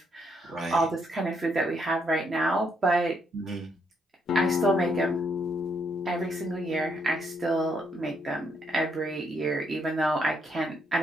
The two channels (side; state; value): both; normal; correlation 0.74